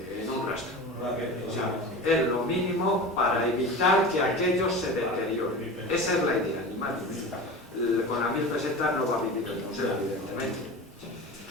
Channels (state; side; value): normal; both; correlation 0.31